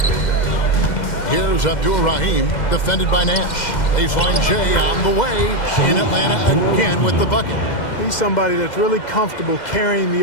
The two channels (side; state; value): right; late; 2.1 ms